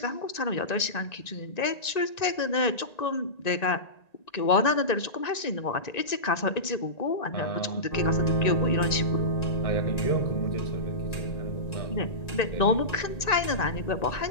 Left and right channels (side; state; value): right; late; 1.9 ms